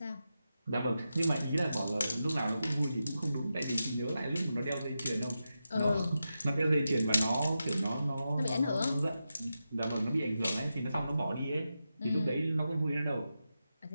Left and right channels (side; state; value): both; inverted; correlation -0.90